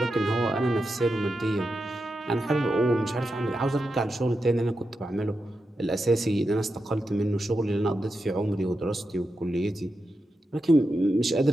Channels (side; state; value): both; normal; correlation 0.88